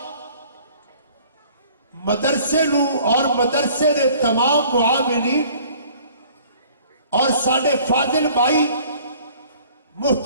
مدرسے نو اور مدرسے دے تمام معاونین اور ساڈے فاضل بھائی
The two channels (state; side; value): inverted; both; correlation -0.53